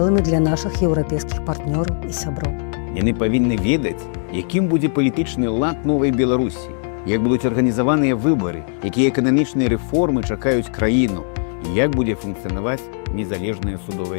для нашых еўрапейскіх партнёраў і сяброў. Яны павінны ведаць, якім будзе палітычны лад новай Беларусі, як будуць арганізаваныя выбары, якія эканамічныя рэформы чакаюць краіну і як будзе функцыянаваць незалежная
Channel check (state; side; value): silent; right; 60 dB below the other